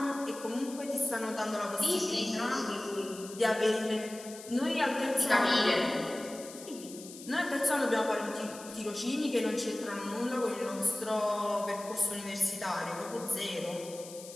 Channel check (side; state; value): left; noise; hiss, 15 dB below the sound